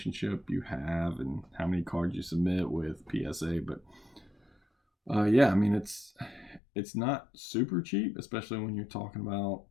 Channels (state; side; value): drops out; right; at 6.6 s